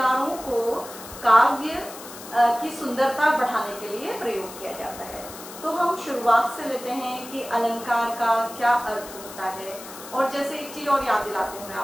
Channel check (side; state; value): left; noise; hiss, 14 dB below the sound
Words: को काव्य की सुंदरता बढ़ाने के लिए प्रयोग किया जाता है। तो हम शुरुआत से लेते हैं कि अलंकार का क्या अर्थ होता है। और जैसे एक चीज और याद दिलाती हूँ मैं,